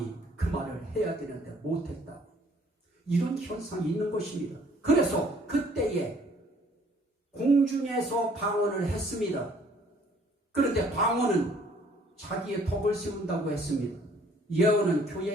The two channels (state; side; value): normal; both; correlation 0.59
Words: 그 말을 해야 되는데 못했다. 이런 현상이 있는 것입니다. 그래서 그때에 공중에서 방언을 했습니다. 그런데 방언은 자기의 덕을 세운다고 했습니다. 예언은